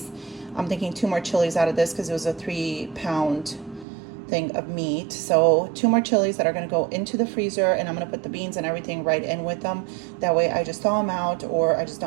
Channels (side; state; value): left; drops out; at 3.9 s